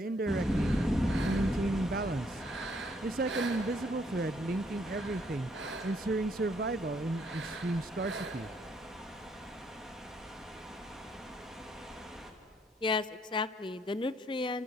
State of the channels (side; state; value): both; normal; correlation 0.69